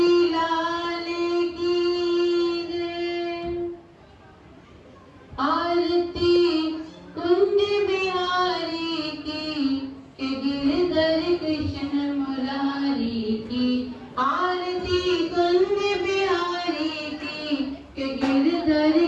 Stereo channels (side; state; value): both; identical; correlation 1.00